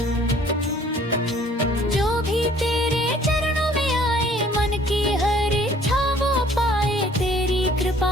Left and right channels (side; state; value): both; normal; correlation 0.56